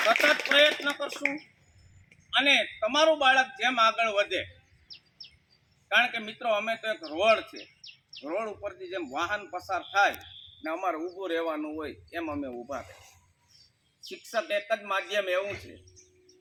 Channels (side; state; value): both; identical; correlation 1.00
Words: સતત પ્રયત્ન કરશું અને તમારું બાળક જેમ આગળ વધે. કારણ કે મિત્રો અમે તો એક રોડ છે, રોડ ઉપરથી જેમ વાહન પસાર થાય ને અમારે ઊભું રહેવાનું હોય એમ અમે ઊભા થાય. શિક્ષક એક જ માધ્યમ એવું છે